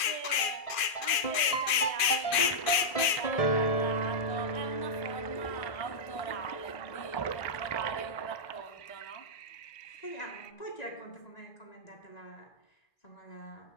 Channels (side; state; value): right; late; 2.4 ms